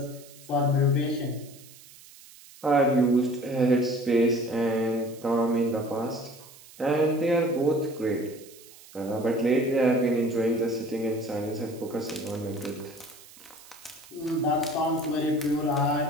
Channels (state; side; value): noise; right; hiss, 21 dB below the sound